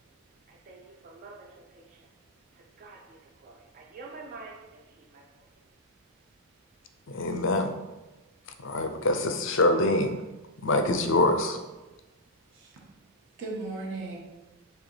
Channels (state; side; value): normal; both; correlation -0.14